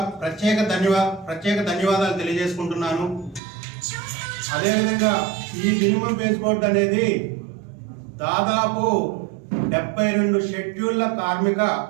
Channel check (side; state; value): left; drops out; at 3.4 s